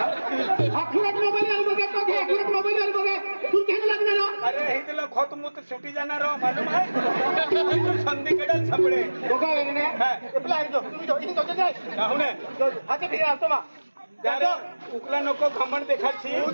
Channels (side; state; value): both; inverted; correlation -1.00